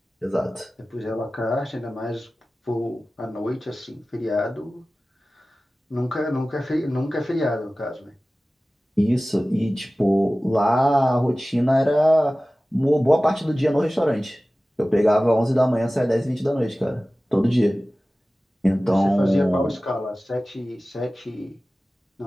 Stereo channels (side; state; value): both; normal; correlation 0.97